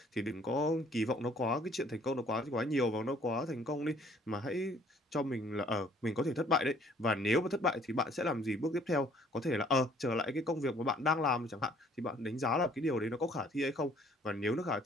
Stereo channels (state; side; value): normal; both; correlation 0.59